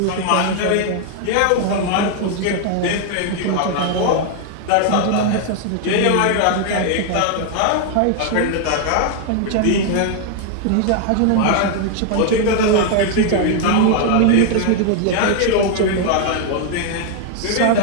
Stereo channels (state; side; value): different; both; correlation 0.00